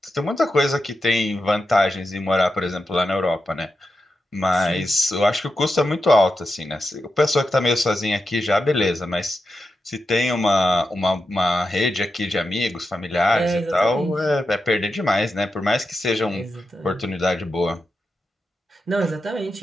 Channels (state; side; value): normal; both; correlation 0.89